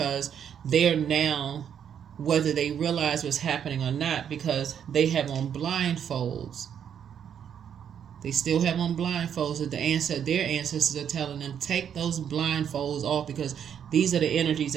they're now, whether they realize what's happening or not, because they have on blindfolds. They still have on blindfolds that their ancestors are telling them, take those blindfolds off, because these are the energies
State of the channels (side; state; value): left; quieter; 8.6 dB